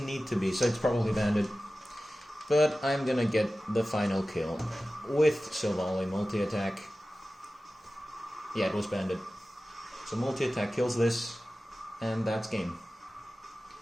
need to be, so it's probably banded. But I'm gonna get the final kill with Sovali multi-attack. Yeah, it was banded. So multi-attack kills this, and that's game.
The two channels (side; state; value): both; normal; correlation 0.95